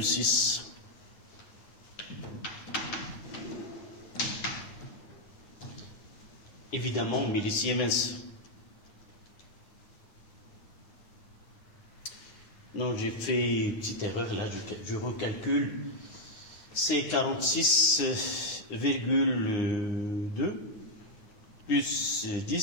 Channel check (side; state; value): right; late; 9.5 ms